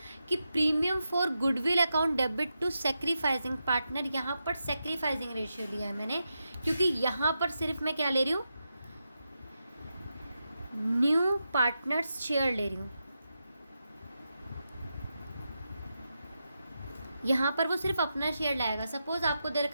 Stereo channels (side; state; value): both; inverted; correlation -0.87